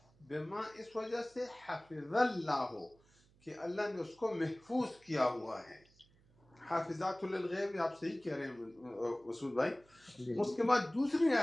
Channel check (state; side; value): noise; right; hum, 30 dB below the sound